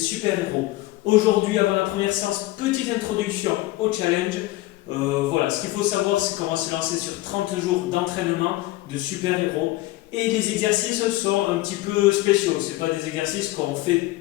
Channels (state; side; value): quieter; right; 17.9 dB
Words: Aujourd'hui, avant la première séance, petite introduction au challenge. Voilà, ce qu'il faut savoir, c'est qu'on va se lancer sur 30 jours d'entraînement de super-héros. Et les exercices sont un petit peu spéciaux. Ce pas des exercices